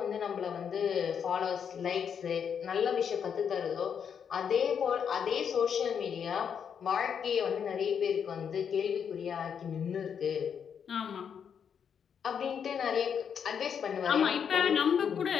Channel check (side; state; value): right; quieter; 7.5 dB